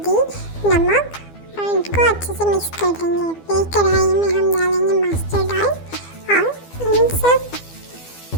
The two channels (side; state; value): right; late; 12 ms